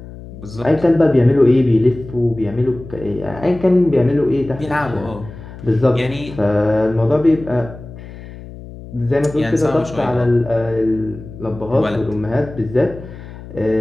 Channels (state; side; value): noise; left; hum, 15 dB below the sound